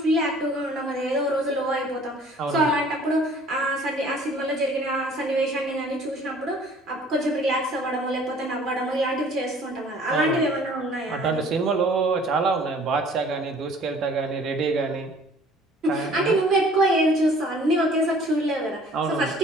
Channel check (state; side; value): normal; both; correlation 0.53